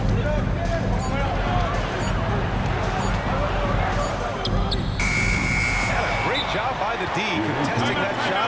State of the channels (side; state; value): both; identical; correlation 1.00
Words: a great job by the D, contesting that